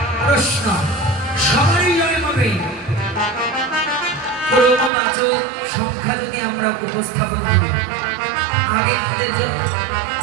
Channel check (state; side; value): drops out; left; at 4.9 s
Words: প্রশ্ন, সবারই জয় হবে ক্রমবাচক সংখ্যা যদি আমরা উপস্থাপন করি। আগে